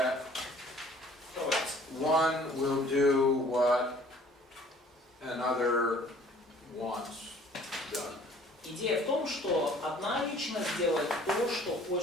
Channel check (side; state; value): both; normal; correlation 0.54